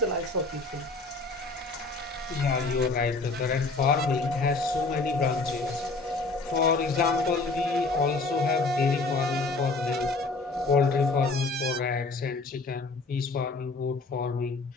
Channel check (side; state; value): right; quieter; 3.6 dB